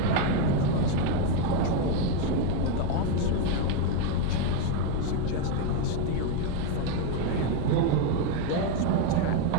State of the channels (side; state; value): both; different; correlation 0.02